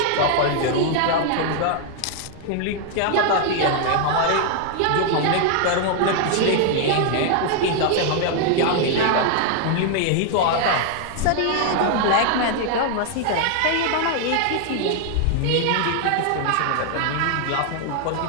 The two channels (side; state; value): both; different; correlation 0.00